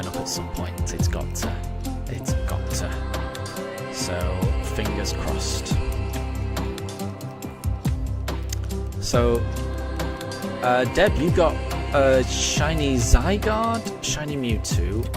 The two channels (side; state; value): both; identical; correlation 1.00